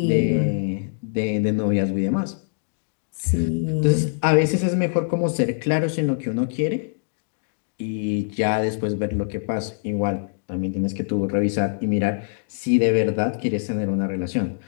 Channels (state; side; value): silent; right; digital silence